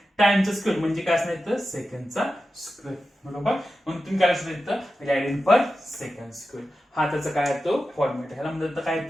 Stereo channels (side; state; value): both; normal; correlation 0.92